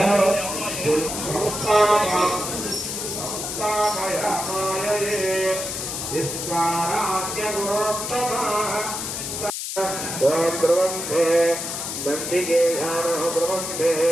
ब्रह्मे नंदिकेशानः ब्रह्मे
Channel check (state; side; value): noise; left; hiss, 5 dB below the sound